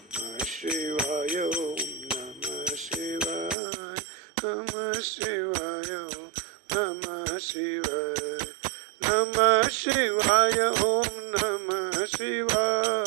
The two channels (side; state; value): left; drops out; at 3.6 s